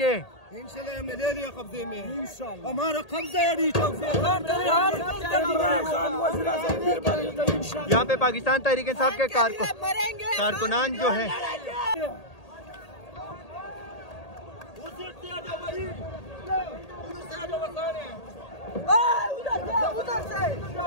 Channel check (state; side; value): late; right; 1.8 ms